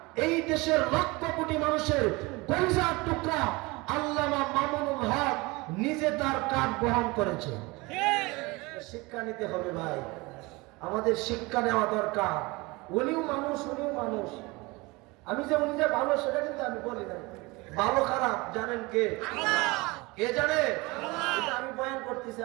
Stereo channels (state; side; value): quieter; left; 24.0 dB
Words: এই দেশের লক্ষ কোটি মানুষের কলিজার টুকরা আল্লামা মামুনুল হক নিজে তার কাঠ বহন করেছে। শিক্ষা নিতে হবে ভাই, আমাদের শিক্ষা নেওয়া দরকার। উনিও মানুষ, উনিও মানুষ। আমি যে উনি যে ভালো সেটা কিন্তু আমি বলি না, ভালো খারাপ জানেন কে? কে জানে? এটা আমি বয়ান করতেছি,